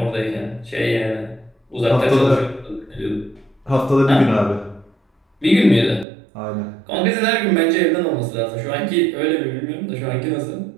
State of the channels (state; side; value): drops out; left; at 6.1 s